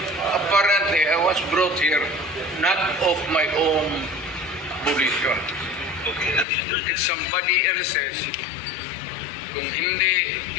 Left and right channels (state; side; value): drops out; right; at 6.5 s